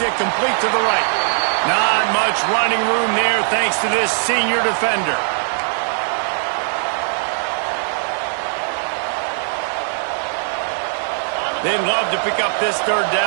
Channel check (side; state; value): left; silent; 63 dB below the other